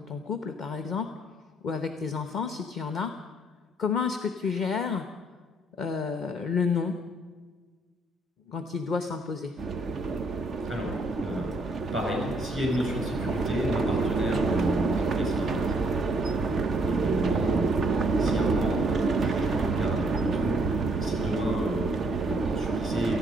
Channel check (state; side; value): normal; both; correlation 0.68